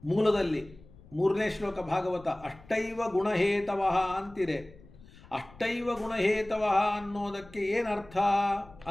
ಮೂಲದಲ್ಲಿ. 3ನೇ ಶ್ಲೋಕ ಭಾಗವತ. ಅಷ್ಟೈವ ಗುಣಹೇತವಃ ಅಂತಿದೆ. ಅಷ್ಟೈವ ಗುಣಹೇತವಃ ಅನ್ನೋದಕ್ಕೆ ಏನರ್ಥ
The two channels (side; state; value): left; noise; rumble, 22 dB below the sound